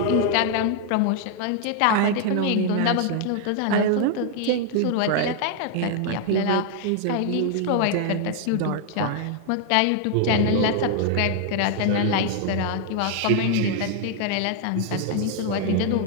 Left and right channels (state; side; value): different; both; correlation 0.00